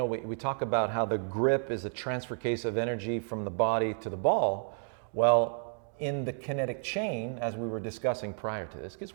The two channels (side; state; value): left; silent; 57 dB below the other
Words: we talk about how the grip is a transfer case of energy from the body to the ball. Well, in the kinetic chain, as we were discussing prior to this, because